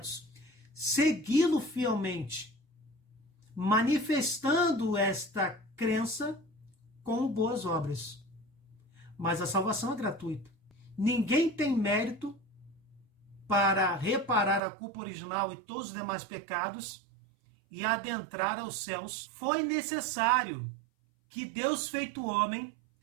Segui-lo fielmente, manifestando esta crença com boas obras. Mas a salvação é gratuita. Ninguém tem mérito para reparar a culpa original e todos os demais pecados e adentrar aos céus. Foi necessário que Deus, feito homem,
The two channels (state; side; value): drops out; left; at 14.6 s